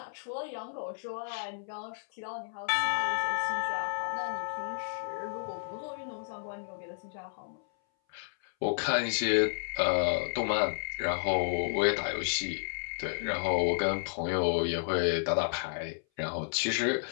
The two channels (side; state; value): right; silent; 56 dB below the other